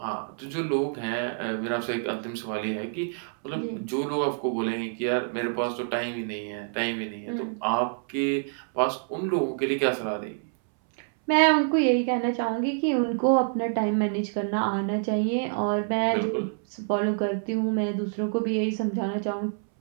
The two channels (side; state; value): left; silent; 60 dB below the other